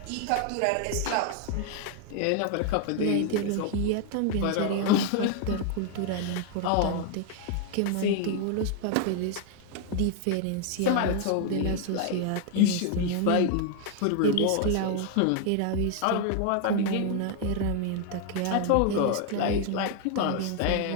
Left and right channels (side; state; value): both; different; correlation 0.00